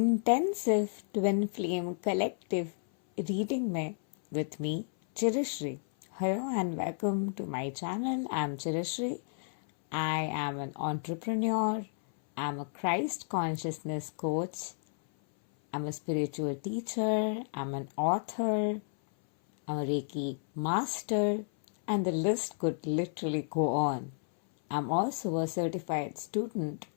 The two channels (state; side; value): silent; right; 57 dB below the other